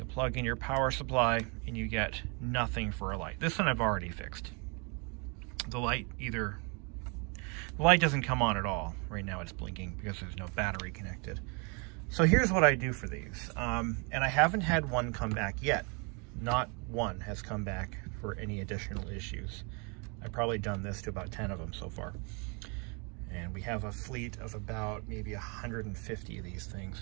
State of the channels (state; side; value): quieter; left; 33.1 dB